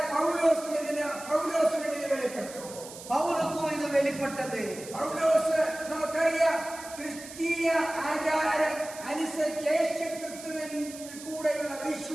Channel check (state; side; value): noise; right; hiss, 14 dB below the sound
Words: പൗലോസിന് ഇത് വെളിപ്പെട്ടു. பவுலுக்கும் இது வெளிப்பட்டது. പൗലോസ് നമുക്കറിയാം ക്രിസ്തീയ ആചാരം അനുസരിച്ച് യേശു ക്രിസ്തുവിൻ കൂടെയുള്ള